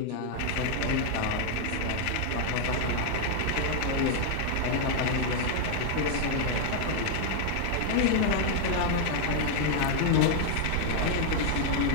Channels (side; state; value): both; different; correlation 0.00